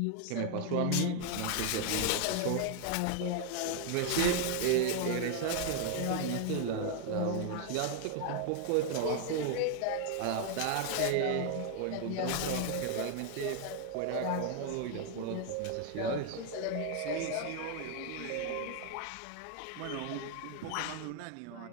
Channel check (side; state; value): both; different; correlation 0.00